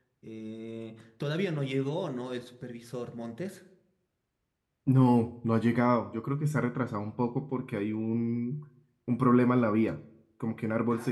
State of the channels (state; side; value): identical; both; correlation 1.00